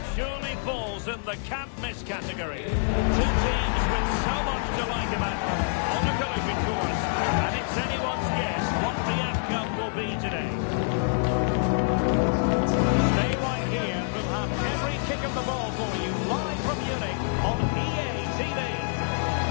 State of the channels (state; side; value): silent; right; digital silence